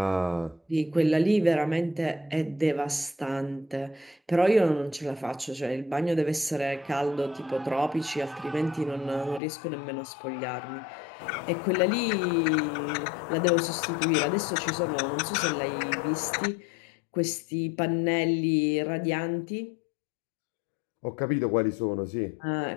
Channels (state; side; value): drops out; right; at 9.4 s